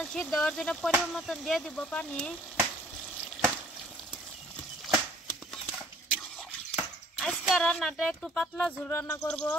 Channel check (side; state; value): both; normal; correlation 0.57